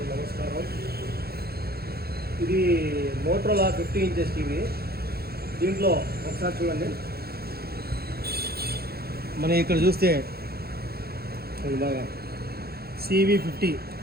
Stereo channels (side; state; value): left; late; 0.45 ms